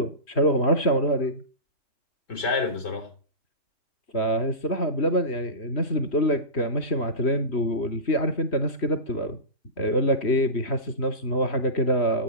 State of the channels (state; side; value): late; right; 3.1 ms